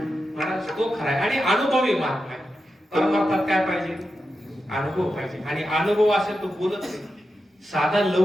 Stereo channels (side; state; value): both; normal; correlation 0.89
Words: महाराज, तो खरा आहे. आणि अनुभवी मार्ग आहे. परमार्थात काय पाहिजे? अनुभव पाहिजे. आणि अनुभव असेल तो बोलत नाही. साधा